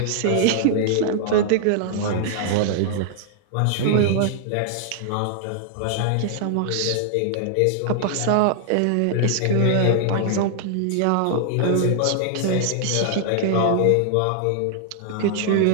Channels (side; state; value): both; different; correlation 0.00